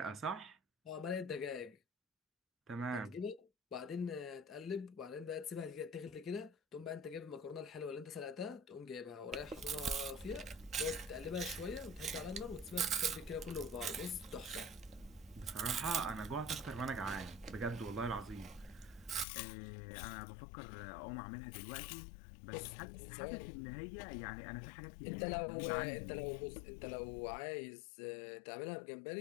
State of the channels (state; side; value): drops out; right; at 19.2 s